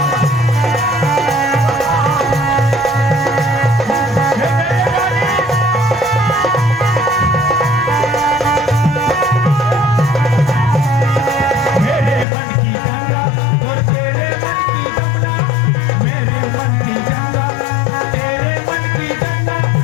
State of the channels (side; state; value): right; drops out; at 12.2 s